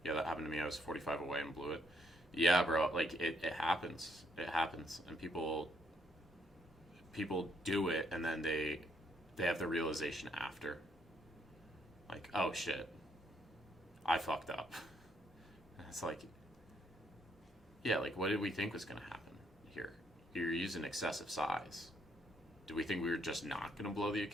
Yeah, that happened to me. I was 45 away and blew it. Yeah, bro. Like it happens. It happens, and people do it, and then they have the realization after. Like, oh shit, I fucked up. It's like, yeah, like what did we think was gonna happen here? You're using excessive size. Do we think we were just not gonna blow the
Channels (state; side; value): normal; both; correlation 0.72